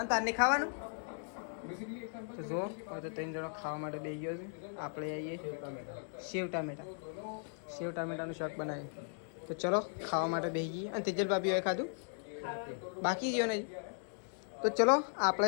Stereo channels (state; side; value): silent; right; digital silence